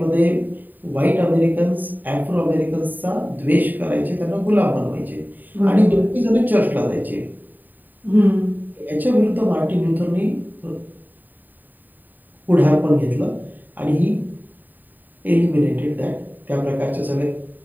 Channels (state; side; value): late; left; 0.088 ms